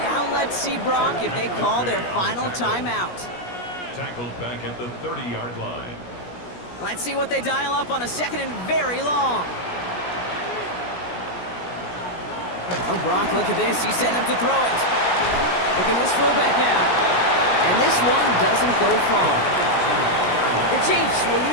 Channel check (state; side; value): late; right; 17 ms